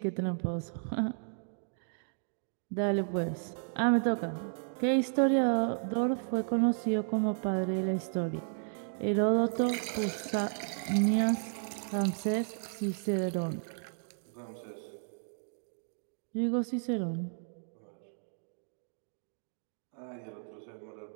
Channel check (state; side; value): silent; left; digital silence